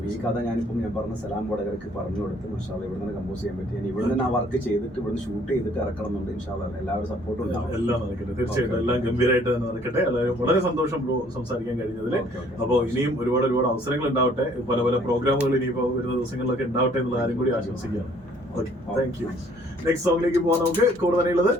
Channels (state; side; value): normal; both; correlation 0.60